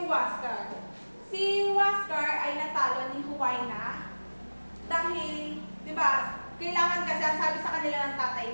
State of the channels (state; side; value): inverted; both; correlation -1.00